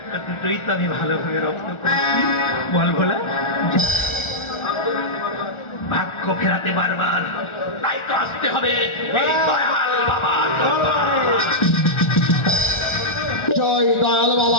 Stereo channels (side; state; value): right; late; 1.4 ms